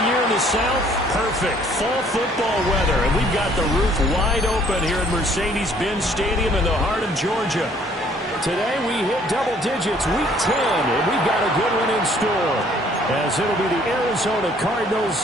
year in the South, perfect. Fall football weather, and we've got the roof wide open here at Mercedes-Benz Stadium in the heart of Georgia. Today we hit double digits, week 10, and we've got a good one in store, as it'll be the Arizona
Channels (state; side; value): normal; both; correlation 0.60